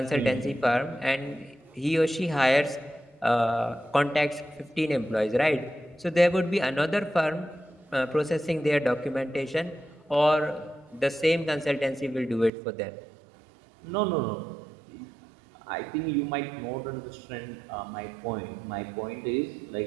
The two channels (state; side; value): drops out; left; at 12.5 s